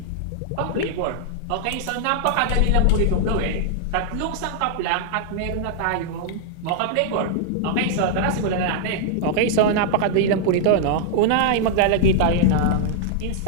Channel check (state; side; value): different; both; correlation -0.01